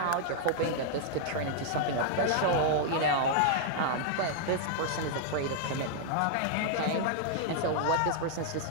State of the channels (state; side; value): different; both; correlation -0.01